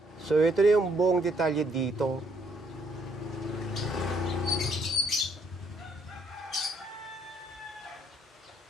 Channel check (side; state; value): both; normal; correlation 0.68